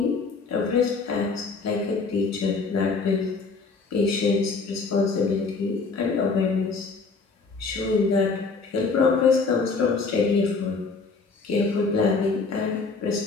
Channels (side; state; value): right; quieter; 4.4 dB